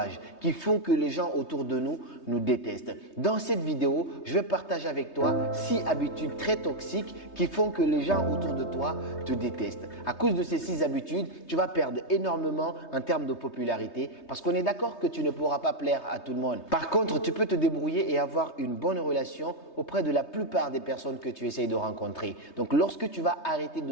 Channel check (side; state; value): right; late; 3.2 ms